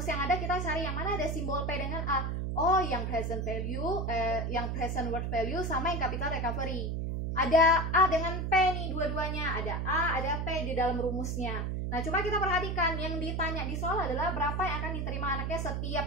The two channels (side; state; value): right; noise; hum, 1 dB below the sound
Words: yang ada, kita cari yang mana ada simbol P dengan A. Oh, yang present value, yang present worth value sama yang capital recovery. Ada A dengan P nih dua-duanya. Ada A, ada P di dalam rumusnya. Nah, coba kita perhatikan. Yang ditanya di soal adalah berapa yang akan diterima anaknya